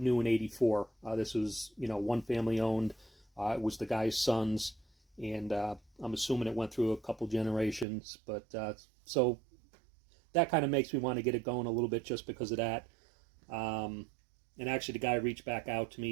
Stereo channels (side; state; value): left; drops out; at 7.9 s